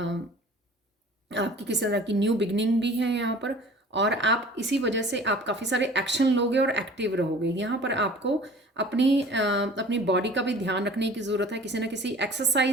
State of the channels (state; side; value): normal; both; correlation 0.45